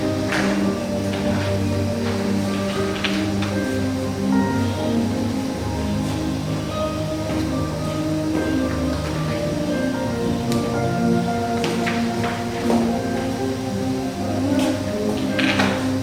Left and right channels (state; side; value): identical; both; correlation 1.00